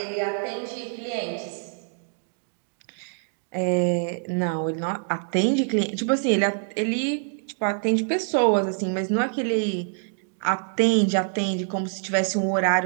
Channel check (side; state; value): left; silent; digital silence